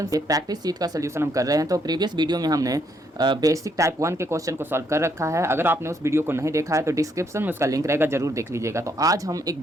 से practice seat का solution हम कर रहे हैं। तो प्रीवियस वीडियो में हमने बेसिक टाइप 1 के क्वेश्चन को सॉल्व कर रखा है। अगर आपने उस वीडियो को नहीं देखा है तो डिस्क्रिप्शन में उसका लिंक रहेगा, जरूर देख लीजिएगा। तो आज हम एक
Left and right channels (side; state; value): both; normal; correlation 0.73